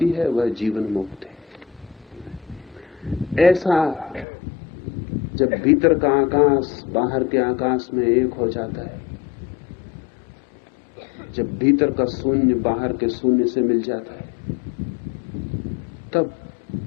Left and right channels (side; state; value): right; drops out; at 4.2 s